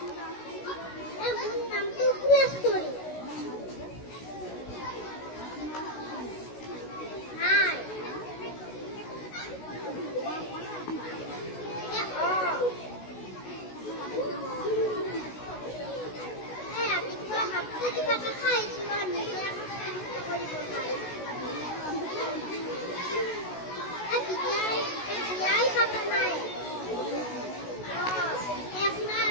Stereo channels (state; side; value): late; right; 16 ms